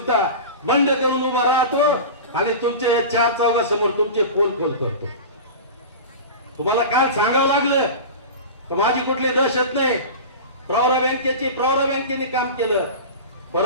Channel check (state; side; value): inverted; both; correlation -0.30